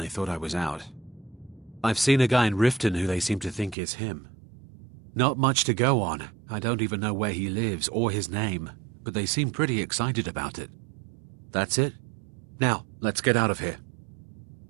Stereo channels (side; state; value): left; drops out; at 3.8 s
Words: thought I was out. I've seen a guy in Riften who they seem to think is him. Not much to go on. I don't even know where he lives or his name, but they seem pretty excited about it. That's it. Now, let's get out of here.